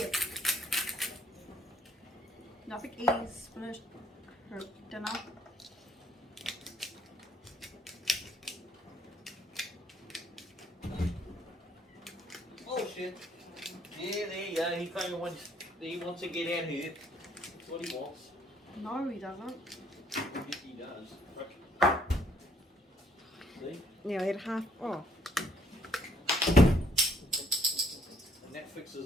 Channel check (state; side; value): normal; both; correlation 0.67